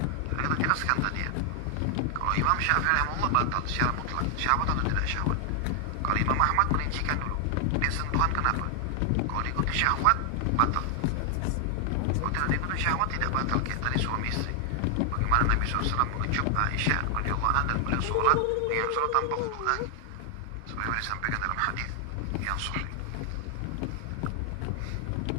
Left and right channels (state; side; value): different; both; correlation 0.00